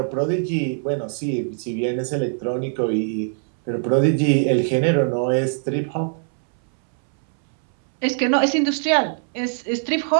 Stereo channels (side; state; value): left; silent; 62 dB below the other